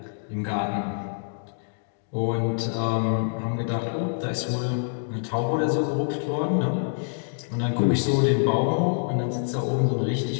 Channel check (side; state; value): right; silent; digital silence